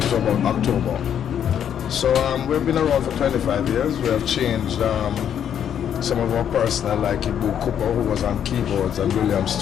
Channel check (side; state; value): right; quieter; 9.1 dB